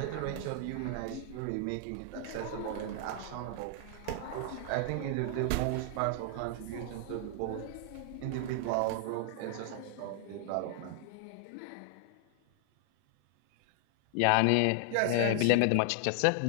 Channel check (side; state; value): both; different; correlation 0.00